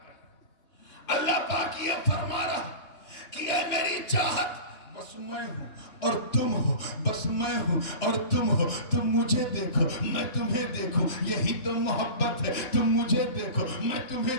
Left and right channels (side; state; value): right; late; 3.0 ms